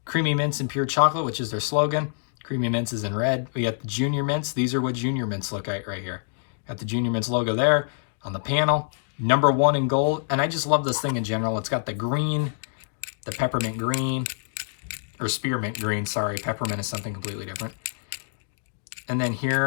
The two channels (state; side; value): silent; right; digital silence